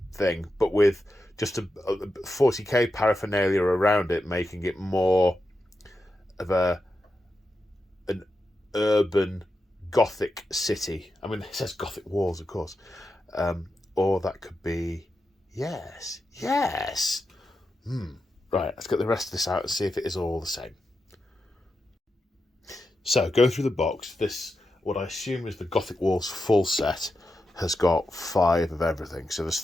thing, but with just a 40k paraphernalia around it, making it more of an urban Gothic city. I mean, it says Gothic Walls, of course. Or that could be, yes. Right, let's get the rest of this out and see if it is all the same. So, going through the box, this, what I assume is the Gothic Walls full set, has got 5 of everything. So there's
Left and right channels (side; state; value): both; normal; correlation 0.88